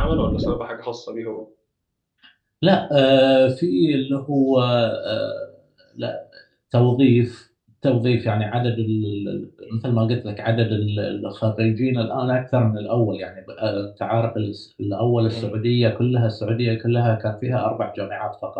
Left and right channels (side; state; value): both; identical; correlation 1.00